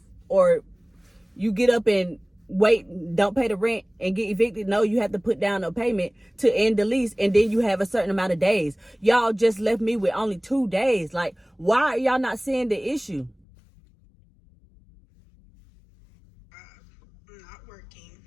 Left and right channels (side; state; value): right; drops out; at 13.4 s